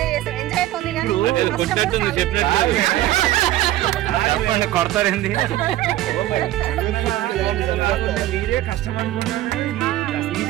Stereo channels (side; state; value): left; quieter; 14.8 dB